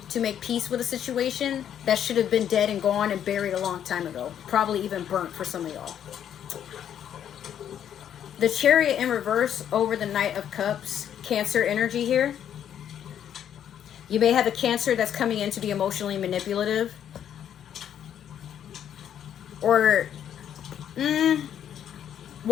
to make peace with a situation that should have been dead and gone and buried a long time ago. Probably even burnt for some of y'all. The Chariot in reverse over the Knight of Cups. Cancer energy here. You may have a Cancer that's coming in to be emotionally manipulative. Or,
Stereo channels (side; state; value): right; quieter; 9.6 dB